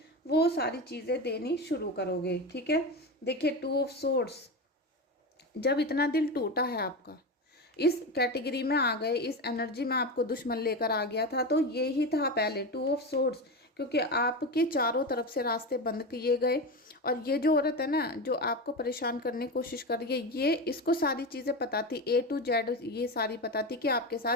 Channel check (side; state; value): both; normal; correlation 0.20